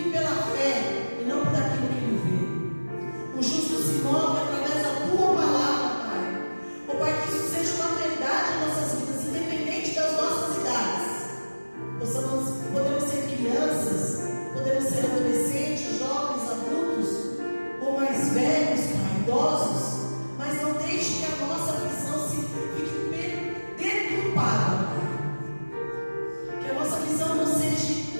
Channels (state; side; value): inverted; both; correlation -1.00